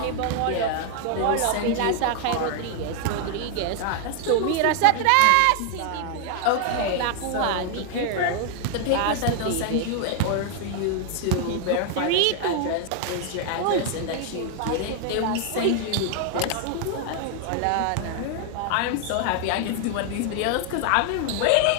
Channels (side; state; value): both; different; correlation 0.00